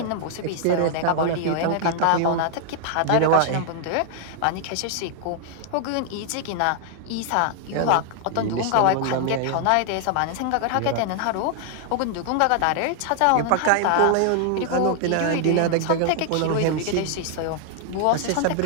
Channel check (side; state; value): both; different; correlation 0.00